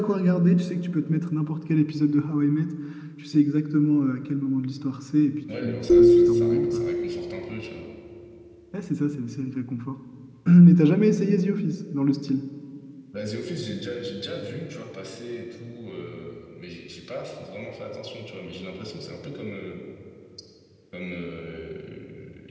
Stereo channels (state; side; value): identical; both; correlation 1.00